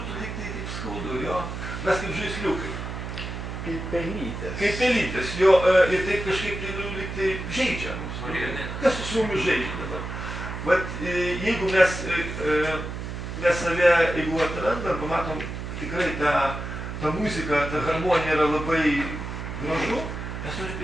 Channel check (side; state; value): right; noise; hum, 7 dB below the sound